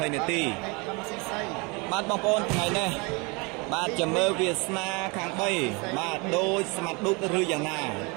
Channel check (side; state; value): left; quieter; 28.9 dB